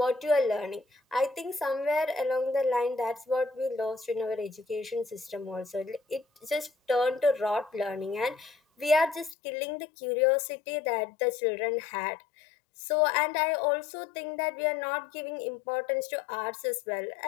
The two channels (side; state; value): right; drops out; at 9.3 s